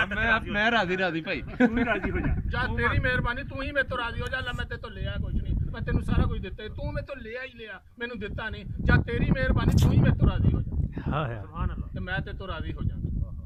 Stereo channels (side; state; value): both; identical; correlation 1.00